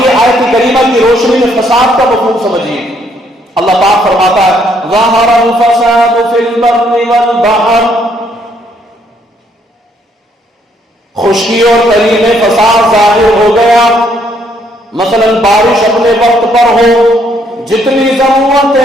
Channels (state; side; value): normal; both; correlation 0.69